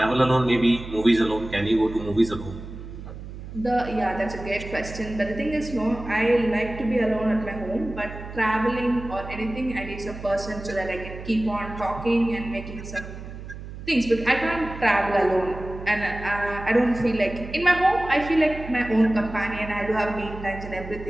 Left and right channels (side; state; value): right; noise; hum, 11 dB below the sound